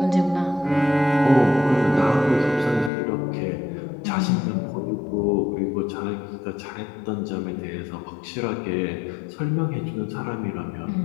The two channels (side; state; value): right; drops out; at 2.9 s